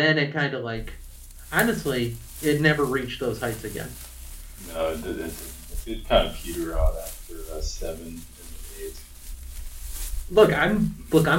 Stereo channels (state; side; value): identical; both; correlation 1.00